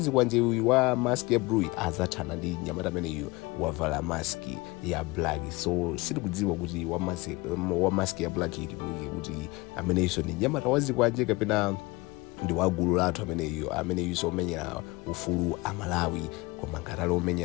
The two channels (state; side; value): quieter; right; 23.2 dB